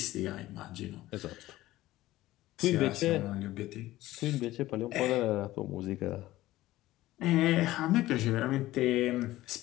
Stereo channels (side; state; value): right; quieter; 16.4 dB